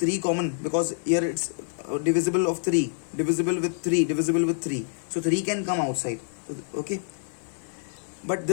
common, because here it's divisible of 3, divisible with 3, so 3 can come outside. Okay, but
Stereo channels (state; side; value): silent; right; 60 dB below the other